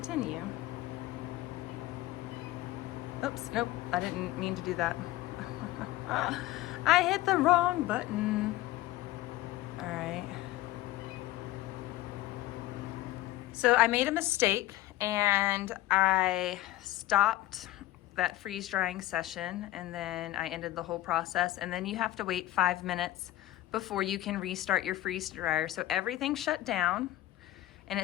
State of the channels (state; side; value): quieter; right; 16.3 dB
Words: Oops, nope, I didn't mean to do that. I hit the wrong button. All right. So I made a mistake and I stopped that freeze drying session and then I ended the whole process, and then you have to wait 5 minutes before you can restart your freeze dryer. So everything shut down and